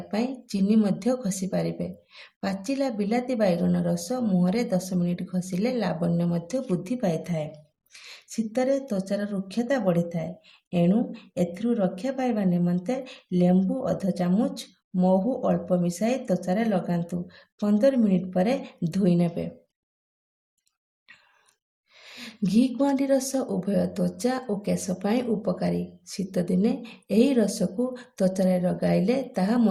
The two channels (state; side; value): identical; both; correlation 1.00